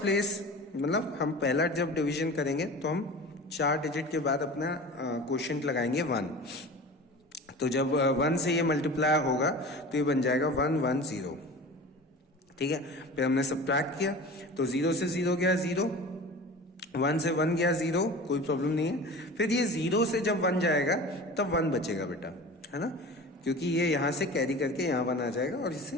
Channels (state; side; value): normal; both; correlation 0.36